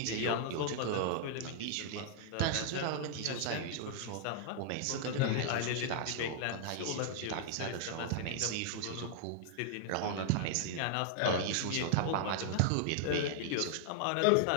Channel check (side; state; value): both; different; correlation 0.00